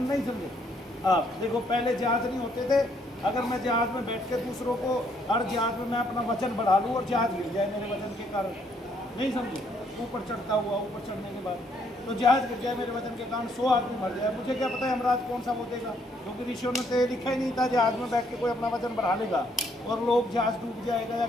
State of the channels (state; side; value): normal; both; correlation 0.69